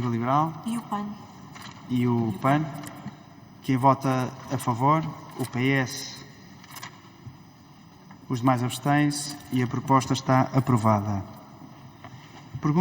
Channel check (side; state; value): both; identical; correlation 1.00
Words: Liberal? E o PAN? E o PAN. Quem vota a favor? O PS. Os demais abstêm-se e a proposta está aprovada.